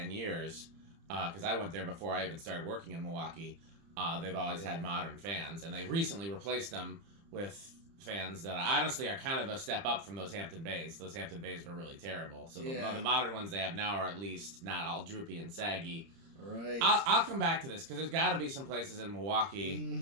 years, because I went there before I even started working in Milwaukee, they've always had modern fans, and they recently replaced them with fans that honestly are kind of a step up from those Hampton Bays. Those Hampton Bays were really terrible. So the modern ones they have now are at least not all droopy and saggy. Right. I'll come back to this, because there's got to be some places in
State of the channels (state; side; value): late; left; 30 ms